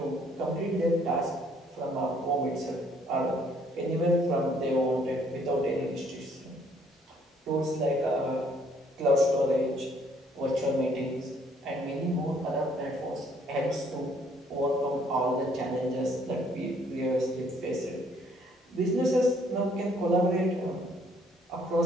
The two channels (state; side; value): normal; both; correlation 0.64